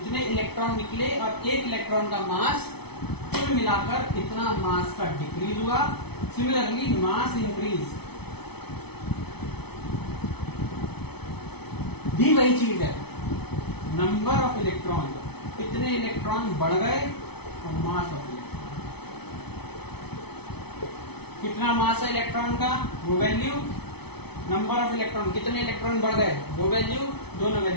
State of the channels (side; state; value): right; late; 0.98 ms